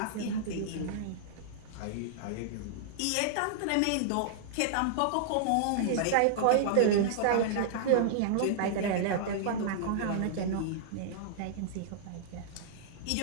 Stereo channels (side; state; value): both; different; correlation -0.01